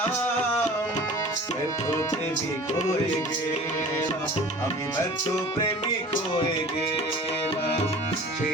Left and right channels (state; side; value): normal; both; correlation 0.42